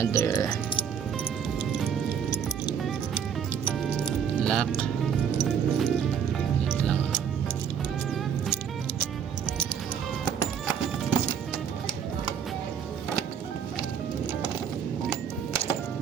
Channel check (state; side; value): quieter; left; 7.7 dB